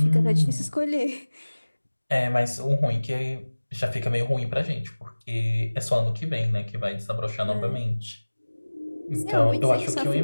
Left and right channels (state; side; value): inverted; both; correlation -1.00